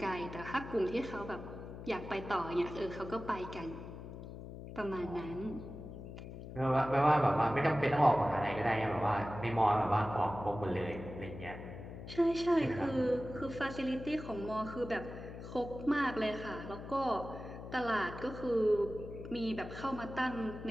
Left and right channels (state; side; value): noise; left; hum, 11 dB below the sound